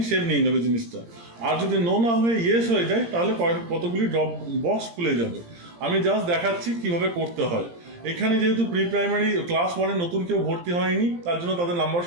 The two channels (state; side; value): late; left; 17 ms